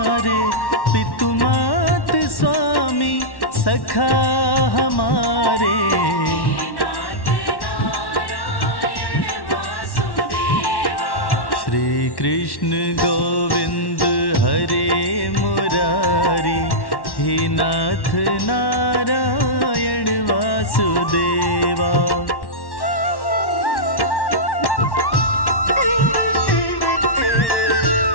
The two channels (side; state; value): right; late; 1.1 ms